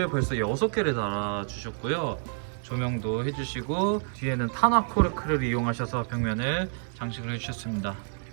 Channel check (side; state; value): left; silent; digital silence